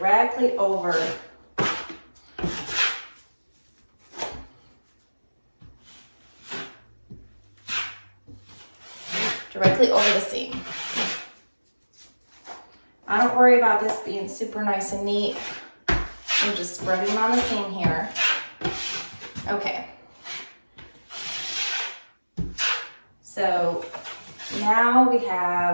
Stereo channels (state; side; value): inverted; both; correlation -1.00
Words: over the seam. I don't worry about this being super nice and neat. I'm just spreading on the seam here. Okay. So now we